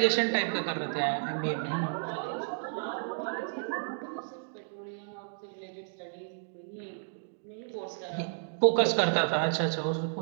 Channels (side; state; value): left; silent; digital silence